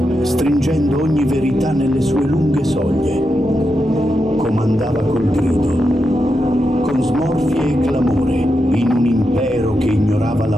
stringendo ogni verità nelle sue lunghe soglie. Comandava col grido, con smorfie e clamore, in un impero che ignorava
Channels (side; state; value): both; normal; correlation 0.86